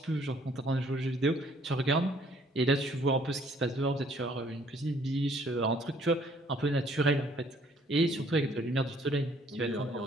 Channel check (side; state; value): both; normal; correlation 0.61